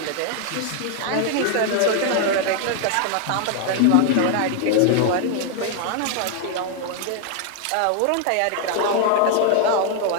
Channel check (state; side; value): different; both; correlation 0.00